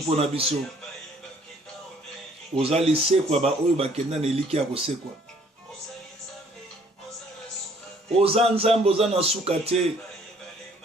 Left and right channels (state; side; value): normal; both; correlation 0.60